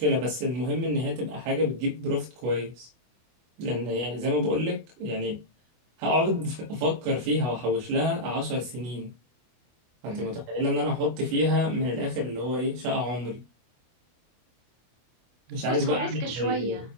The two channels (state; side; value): late; left; 24 ms